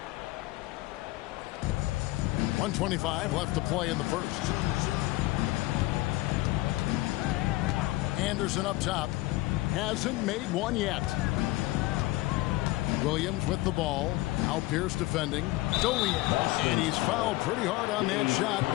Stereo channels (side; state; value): right; quieter; 19.3 dB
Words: .125 left to play in the first. Anderson up top. Hasn't made one yet. Williams with the ball. Now Pierce defending. And he's fouled pretty hard on that shot,